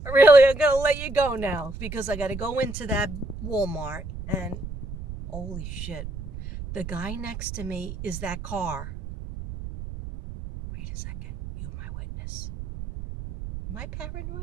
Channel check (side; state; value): right; noise; rumble, 9 dB below the sound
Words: Really, I'm going to let you go now because I got to go into that Walmart and holy shit. The guy next to me is that car. Wait a second. You, my witness. Am I